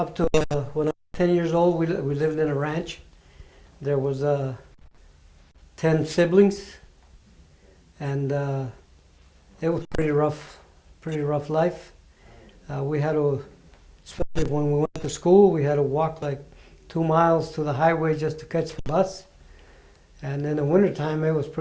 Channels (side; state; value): both; identical; correlation 1.00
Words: when I was 10 years old. We lived in a ranch. There was 10 siblings, and it was pretty rough life. We had to, especially when we went to school, we had to walk like 2 miles to the highway just to catch the bus. And in the wintertime, it was